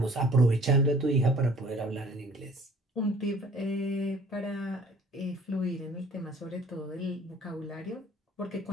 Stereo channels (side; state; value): both; normal; correlation 0.53